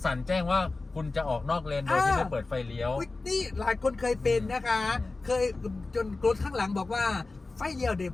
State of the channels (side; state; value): right; quieter; 3.5 dB